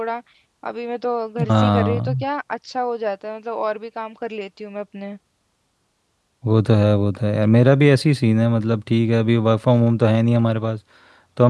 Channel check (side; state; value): both; identical; correlation 1.00